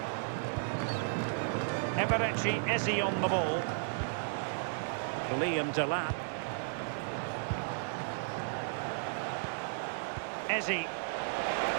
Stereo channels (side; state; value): left; silent; digital silence